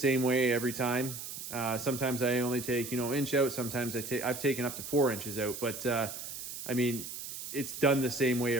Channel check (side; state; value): right; noise; hiss, 8 dB below the sound